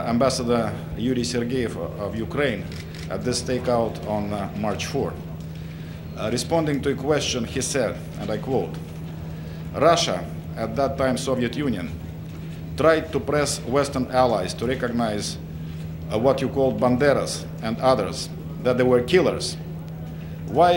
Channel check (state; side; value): identical; both; correlation 1.00